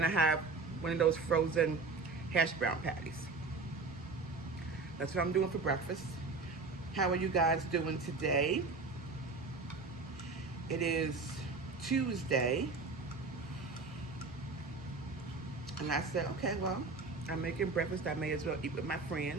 I have one of those frozen hash brown patties. That's what I'm doing for breakfast. How are you guys doing today? It is Tuesday. And I said, okay, well, I'm making breakfast. I may as well eat with my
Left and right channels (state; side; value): quieter; left; 4.0 dB